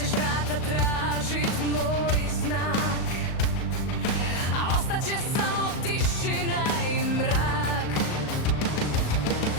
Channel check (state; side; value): late; right; 37 ms